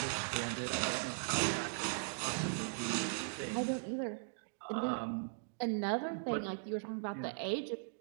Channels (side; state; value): left; silent; digital silence